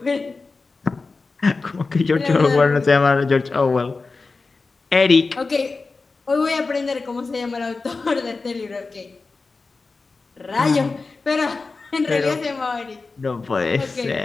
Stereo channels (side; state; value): right; quieter; 4.0 dB